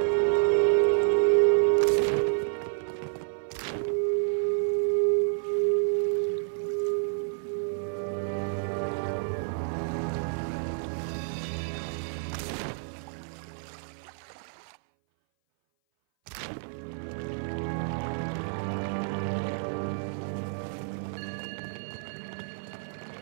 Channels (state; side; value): silent; left; 58 dB below the other